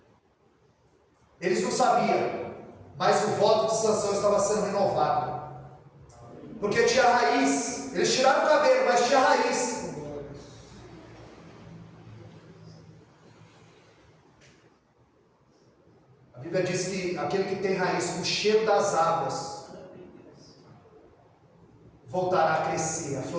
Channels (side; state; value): both; identical; correlation 1.00